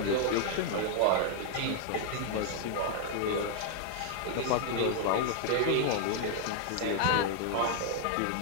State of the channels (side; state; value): both; different; correlation 0.00